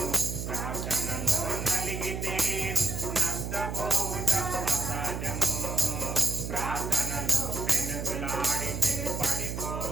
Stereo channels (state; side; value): noise; right; hum, 5 dB below the sound